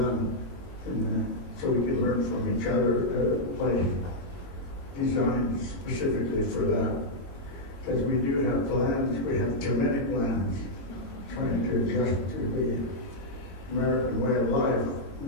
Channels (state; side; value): late; right; 22 ms